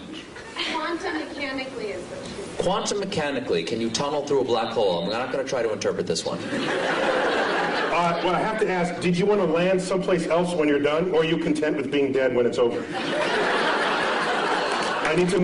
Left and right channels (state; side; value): identical; both; correlation 1.00